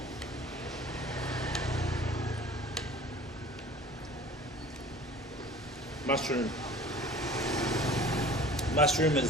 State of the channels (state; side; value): normal; both; correlation 0.45